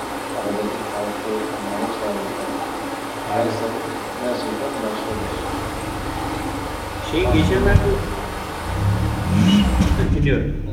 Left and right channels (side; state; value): both; identical; correlation 1.00